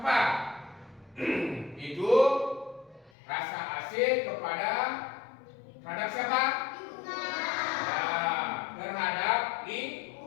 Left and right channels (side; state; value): right; drops out; at 3.1 s